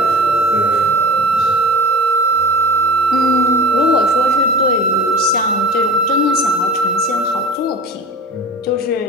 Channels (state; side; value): normal; both; correlation 0.37